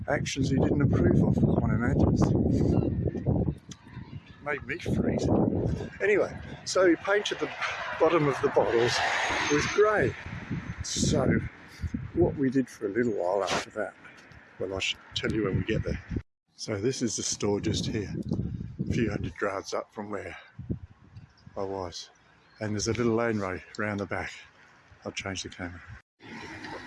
actions he didn't approve of, one imagines. Made me freeze. Anyway, so he painted the bottom of the bottles with grey. So what we did for a little while after that, well, I should tell you when we get there. So this is the store just here, a few hundred yards up from where I was. And there's a little lane road round the back. I'll change the camera.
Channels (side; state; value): both; identical; correlation 1.00